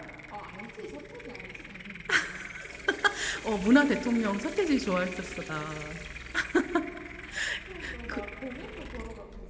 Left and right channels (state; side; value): identical; both; correlation 1.00